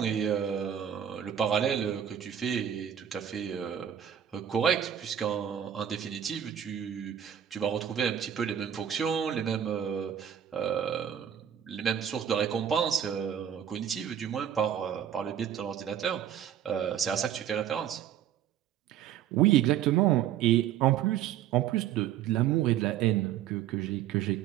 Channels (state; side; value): quieter; left; 9.7 dB